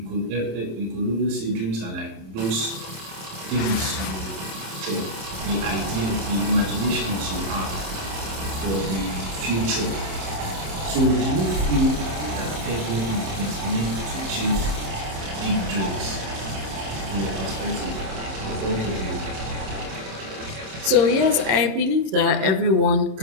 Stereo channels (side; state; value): left; late; 27 ms